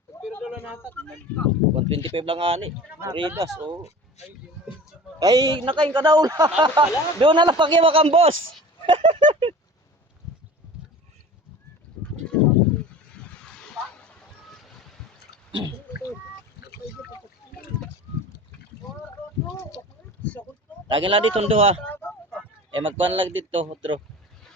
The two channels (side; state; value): both; normal; correlation 0.38